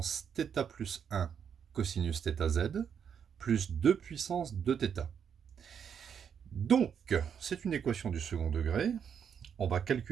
θ plus 1 cosinus θz plus 2 puissance 2θ. Donc, c'est une équation du second degré. On va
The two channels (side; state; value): left; quieter; 7.7 dB